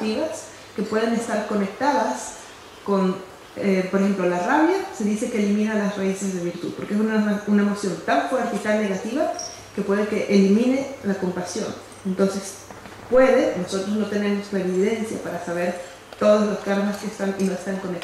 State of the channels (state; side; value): identical; both; correlation 1.00